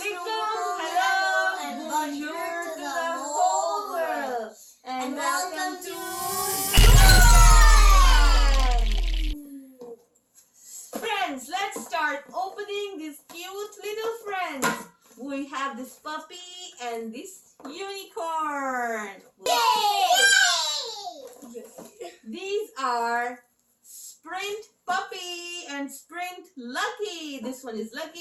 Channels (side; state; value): both; identical; correlation 1.00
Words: hello, and bonjour to the whole world, and welcome to Friends. Let's start opening these cute little friends. We have this puppy and this unicorn. Yay! These are Sprint Puppy and Sprint Lucky. This one is